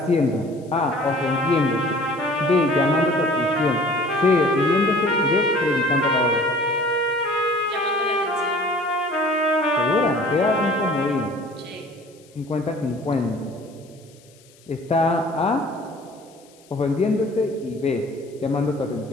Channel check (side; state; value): left; noise; hiss, 28 dB below the sound